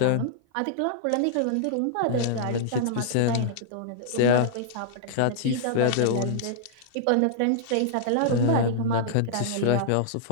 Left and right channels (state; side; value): different; both; correlation -0.02